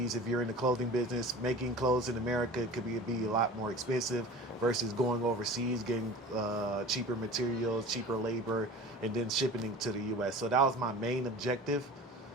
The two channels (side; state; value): both; normal; correlation 0.38